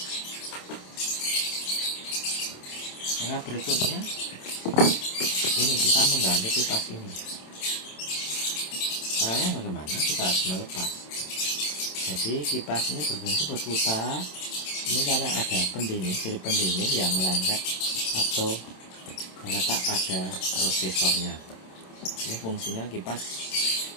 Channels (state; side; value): late; right; 27 ms